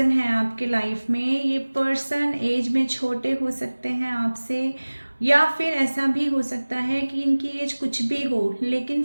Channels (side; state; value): both; inverted; correlation -1.00